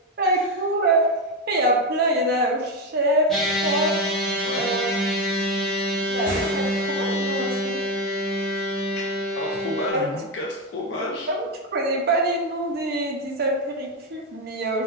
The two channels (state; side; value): normal; both; correlation 0.11